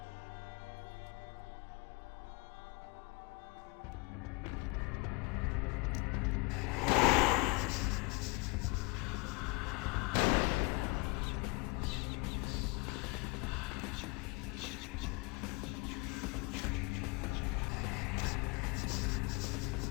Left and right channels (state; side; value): quieter; right; 27.1 dB